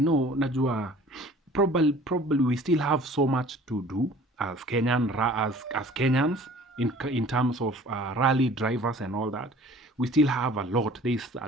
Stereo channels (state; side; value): normal; both; correlation 0.49